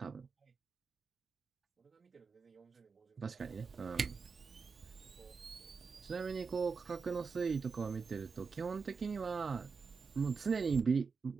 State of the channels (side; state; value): left; quieter; 5.1 dB